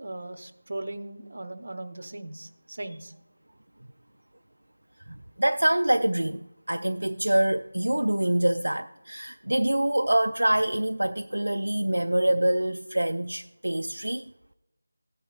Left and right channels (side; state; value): both; inverted; correlation -1.00